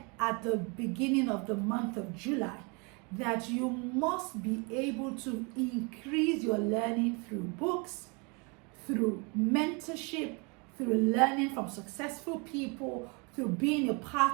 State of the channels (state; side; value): quieter; left; 31.6 dB